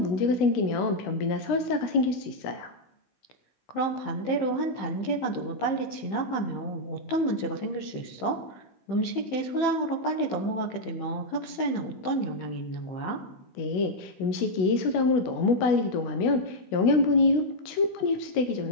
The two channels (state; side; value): late; right; 15 ms